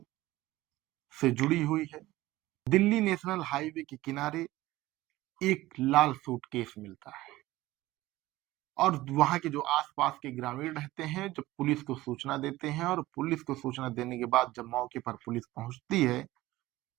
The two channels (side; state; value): left; quieter; 17.4 dB